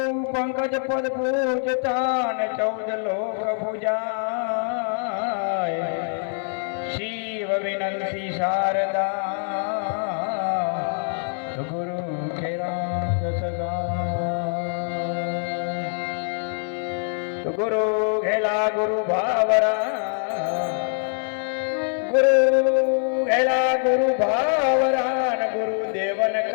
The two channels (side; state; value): right; silent; 59 dB below the other